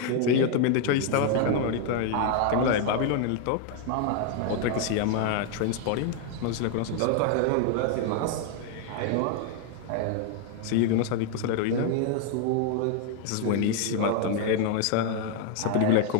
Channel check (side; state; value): both; different; correlation 0.00